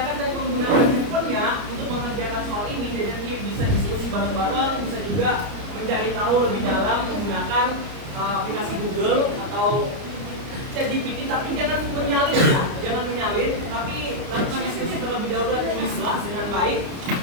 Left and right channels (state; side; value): late; left; 30 ms